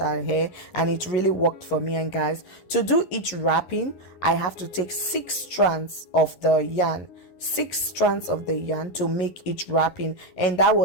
hair, and it really worked for me. And guys, to do each wrapping, I have to take 6 strands of the yarn, 6 strands of the yarn to make each wrapping, and that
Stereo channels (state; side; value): late; right; 11 ms